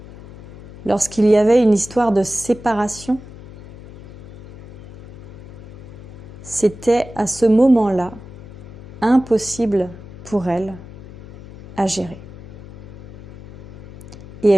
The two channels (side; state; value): left; noise; hum, 16 dB below the sound